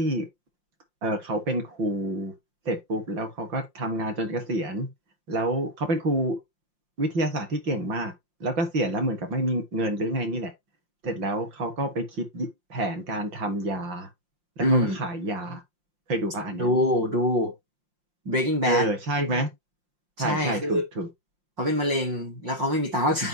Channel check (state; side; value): late; left; 5.7 ms